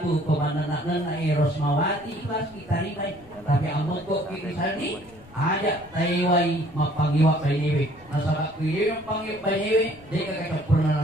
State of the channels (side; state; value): left; noise; rumble, 23 dB below the sound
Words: komandan Rosmawati ikhlas kita ribai, tapi ambo kok kita sandi ajak taiwai mapangiwa bainewe nasabak kuyewe mapangiwa bainewe dia kakak